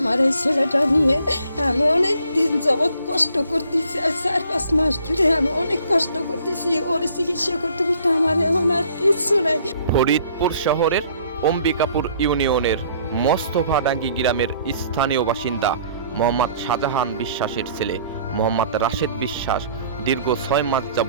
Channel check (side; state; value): both; inverted; correlation -0.59